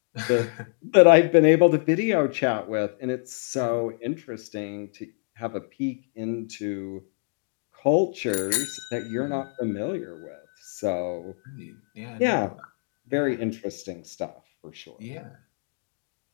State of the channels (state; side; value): silent; right; 61 dB below the other